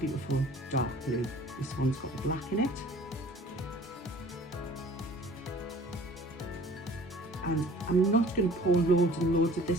dark blue. This one's got the black in it. And I'm not going to pour loads and loads of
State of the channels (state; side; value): normal; both; correlation 0.49